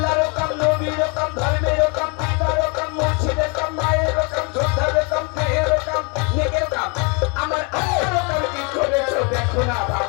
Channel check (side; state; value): right; quieter; 32.6 dB